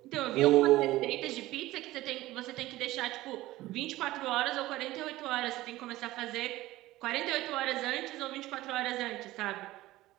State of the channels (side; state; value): left; quieter; 17.1 dB